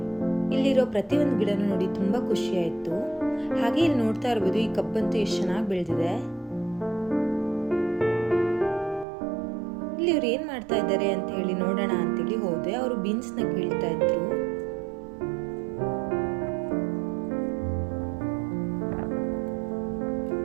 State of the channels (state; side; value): drops out; left; at 9.1 s